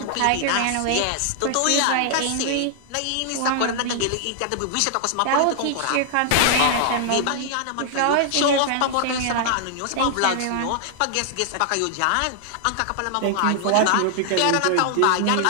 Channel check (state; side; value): different; both; correlation 0.00